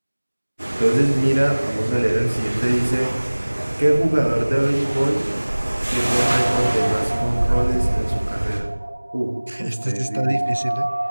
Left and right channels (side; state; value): both; inverted; correlation -1.00